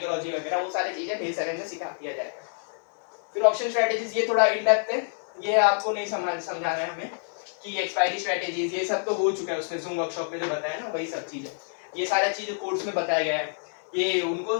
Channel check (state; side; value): silent; right; 60 dB below the other